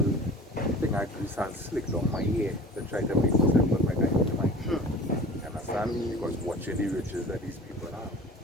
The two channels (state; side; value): normal; both; correlation 0.41